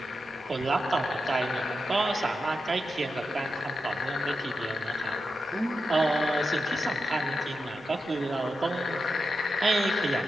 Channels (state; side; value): normal; both; correlation 0.88